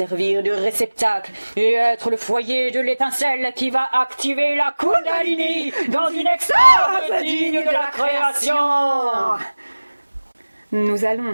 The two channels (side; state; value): both; inverted; correlation -1.00